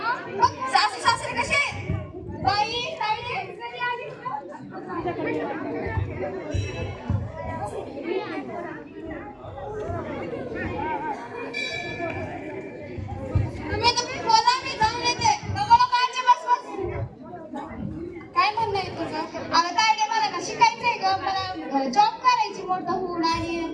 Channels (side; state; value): both; identical; correlation 1.00